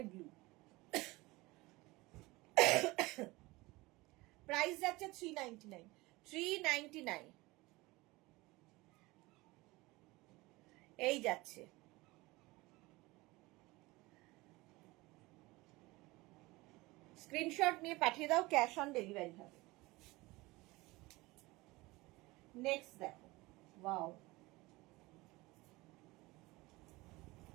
ব্লু। প্রাইস যাচ্ছে 399, 399। এই যাচ্ছে, স্ক্রিনশট নিয়ে পাঠিয়ে দাও, ক্যাশ অন ডেলিভারি হবে। নেক্সট দেখো, ওয়াও,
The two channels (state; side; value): quieter; left; 21.6 dB